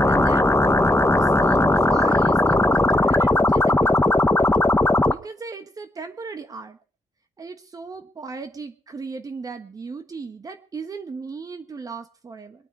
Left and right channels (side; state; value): both; normal; correlation 0.77